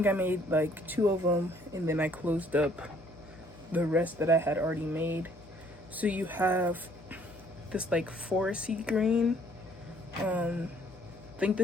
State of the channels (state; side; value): noise; left; hum, 22 dB below the sound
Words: I made like 2 of them, and then I closed up the rest that I had already made. So you have this like foresty green, I think